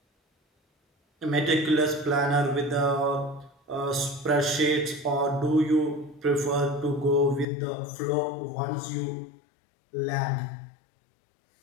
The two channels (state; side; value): drops out; right; at 7.5 s